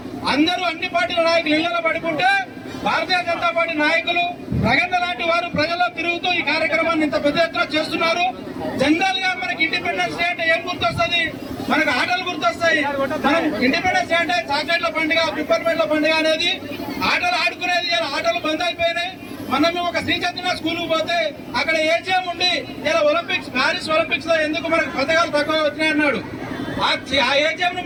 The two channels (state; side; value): identical; both; correlation 1.00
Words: అందరూ అన్ని పార్టీల నాయకులు ఇళ్లలో పడుకుంటే భారతీయ జనతా పార్టీ నాయకులు ప్రగన్న లాంటి వారు ప్రజల్లో తిరుగుతూ ఈ కార్యక్రమాన్ని ఇంత పెద్ద ఎత్తున చేస్తున్నారు. జనరల్ గా మనకి ఇండిపెండెన్స్ డే అంటే ఏం గుర్తొస్తుంది? మనకు ఆటలు గుర్తొస్తాయి. మనం ఇండిపెండెన్స్ డే అంటే చాక్లెట్ల పండుగ, పిప్పర్మెంట్ల పండుగ అనేది ఆటలు ఆడుకునేది. ఇలా ఆటలు బంద్ అయిపోయినాయి. మనం ఒక శ్రీ చైతన్య స్కూల్ పోతే అక్కడ ఏజీఎం ఉండి ఇలా ఒలింపిక్స్, ప్యారిస్ ఒలింపిక్స్ లో ఎందుకు మనకు పథకాలు తక్కువ వచ్చినాయి అన్నాడు. ఆ ఏజీఎం ను